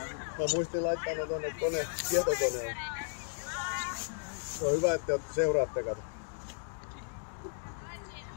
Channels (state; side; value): silent; right; digital silence